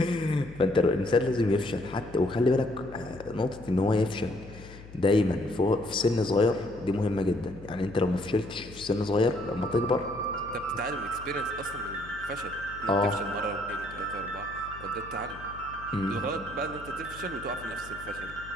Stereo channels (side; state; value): left; noise; hum, 17 dB below the sound